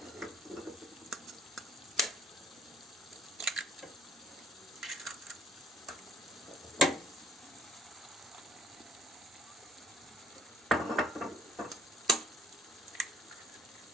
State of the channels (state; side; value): normal; both; correlation 0.64